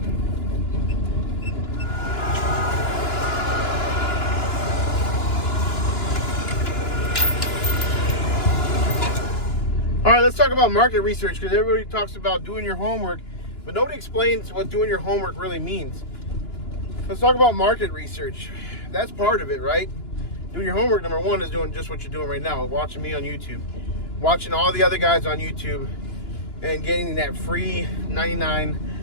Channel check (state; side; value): late; right; 2.9 ms